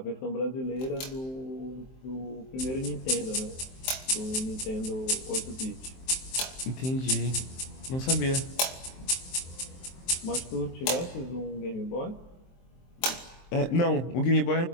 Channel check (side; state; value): right; late; 23 ms